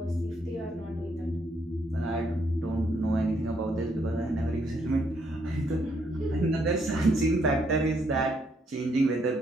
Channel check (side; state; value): both; normal; correlation 0.73